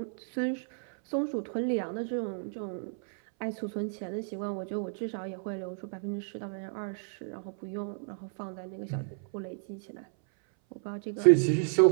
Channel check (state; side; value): silent; left; 57 dB below the other